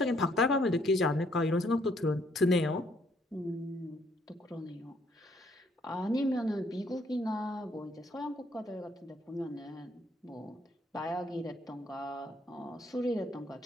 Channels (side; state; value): both; normal; correlation 0.68